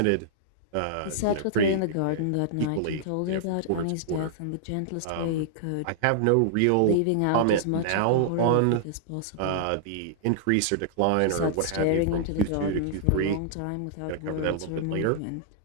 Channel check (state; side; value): different; both; correlation -0.01